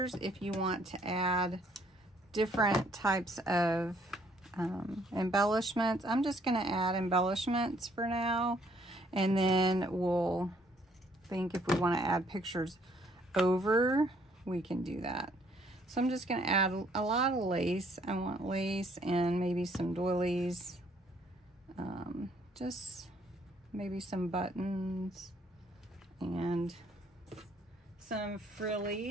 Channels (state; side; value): normal; both; correlation 0.65